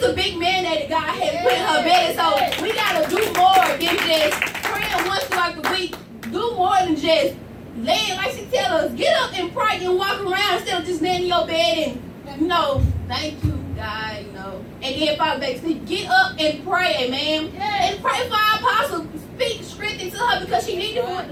a big mandate that God has put in her bed. So we gotta do more than just praying once throughout the week. Do more than just laying, like she tell us, get up and pray and walk around instead of just laying in your bed and, thank you, God, and then fall back to sleep. Get up and pray, amen. And pray for our apostle. Speak strength into her because she needs the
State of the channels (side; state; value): both; identical; correlation 1.00